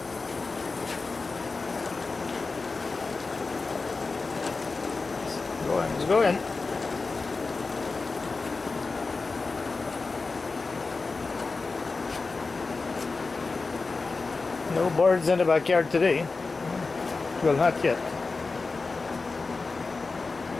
Let's go in. No birds in the backyard today. Well, not yet.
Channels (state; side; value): quieter; right; 4.0 dB